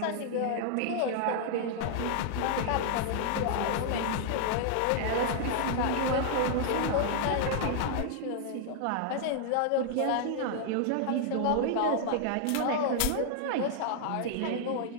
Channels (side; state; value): both; different; correlation -0.01